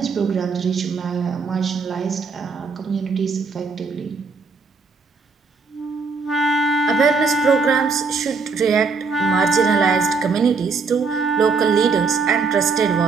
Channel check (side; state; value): left; quieter; 4.6 dB